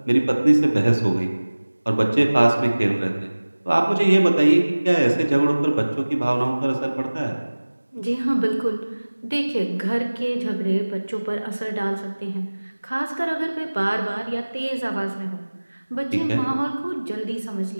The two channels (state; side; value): inverted; both; correlation -1.00